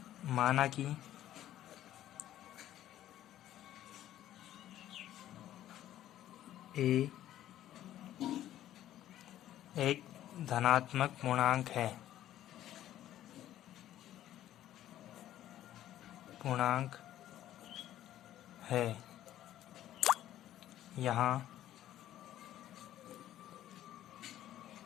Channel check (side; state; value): right; quieter; 12.7 dB